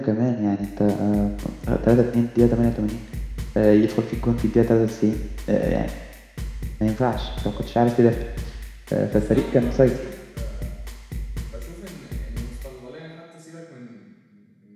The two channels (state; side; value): identical; both; correlation 1.00